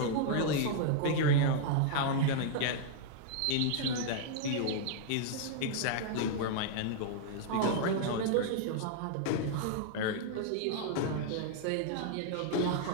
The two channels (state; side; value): different; both; correlation -0.01